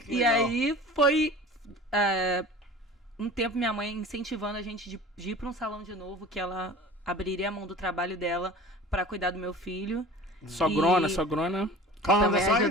E aí foi um tempo minha mãe incentivando a gente de ir para um salão de novo, que ela abriria a mão do trabalho dela para cuidar do meu filho. Sogrona. Também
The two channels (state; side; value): normal; both; correlation 0.40